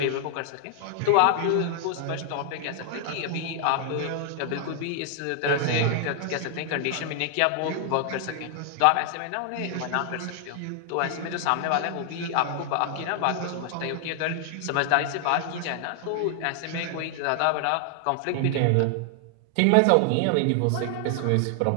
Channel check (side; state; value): both; different; correlation 0.00